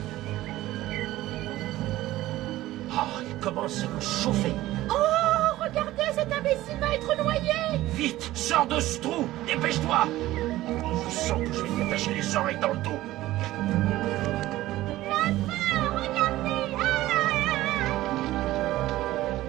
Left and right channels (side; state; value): left; quieter; 16.1 dB